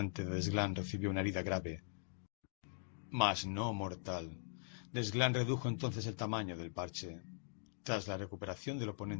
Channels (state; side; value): silent; right; digital silence